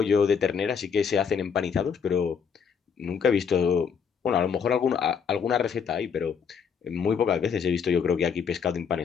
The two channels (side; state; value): right; quieter; 6.6 dB